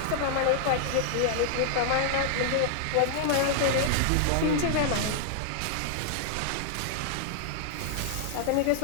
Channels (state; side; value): different; both; correlation -0.01